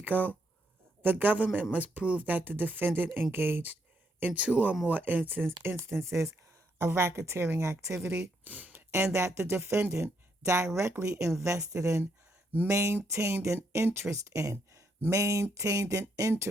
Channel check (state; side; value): normal; both; correlation 0.76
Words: the government must prove that the defendant engaged in two or more instances of racketeering activity and that the defendant directly invested in, maintained an interest in